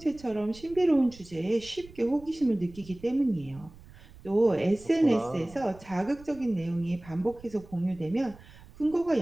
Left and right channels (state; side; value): noise; right; rumble, 21 dB below the sound